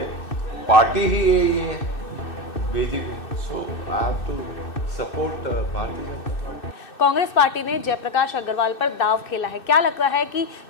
पार्टी ही यही है BJP, so I have to support Bharatiya Janata party. Congress party ने जयप्रकाश अग्रवाल पर दाव खेला है। क्या लगता है कि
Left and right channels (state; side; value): late; right; 2.6 ms